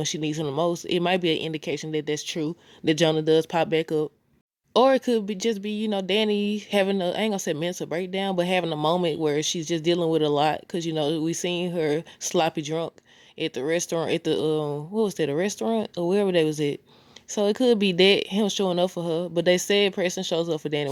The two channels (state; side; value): identical; both; correlation 1.00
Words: she needs him the most, it might be an indication that that's true, that Jonah does pop back up. Or it could be just be, Danny having I ain't gonna say mental breakdown, but having a moment where she's just dealing with a lot. Cause we seen her sloppy drunk at the restaurant, at the what was that, a restaurant or wherever they was at. So it could be that him showing up for her, but they said Preston shows up for Danny